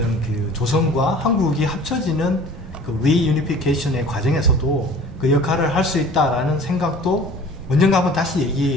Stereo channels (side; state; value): both; normal; correlation 0.46